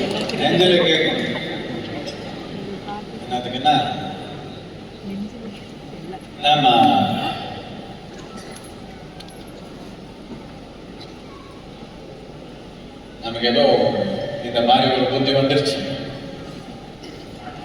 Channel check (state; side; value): identical; both; correlation 1.00